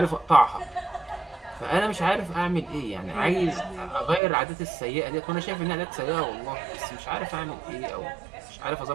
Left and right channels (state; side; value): drops out; left; at 4.2 s